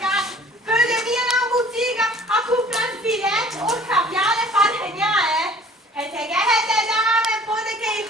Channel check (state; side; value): normal; both; correlation 0.51